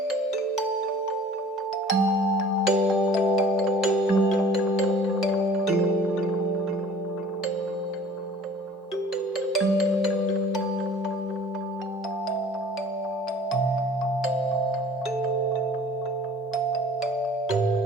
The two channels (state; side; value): normal; both; correlation 0.48